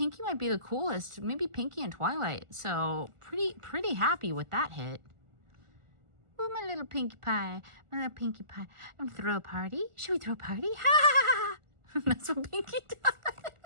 might be the coolest. Maybe Pinkie and Twilight. So pretty happy with that hit. Ooh, my little Pinkie Pie. My little Pinkie Pie. I'm gonna throw a party. Should we throw a party? Ha! That's what Pinkie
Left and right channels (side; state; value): left; late; 1.4 ms